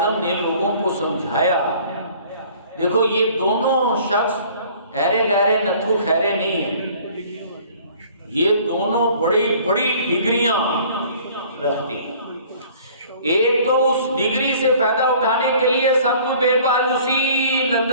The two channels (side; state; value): both; inverted; correlation -0.52